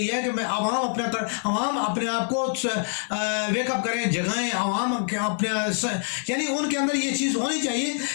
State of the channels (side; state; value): right; silent; digital silence